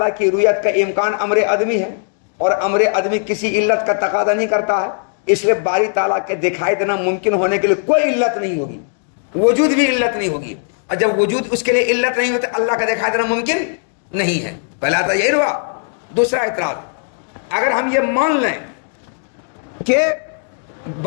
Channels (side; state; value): right; silent; digital silence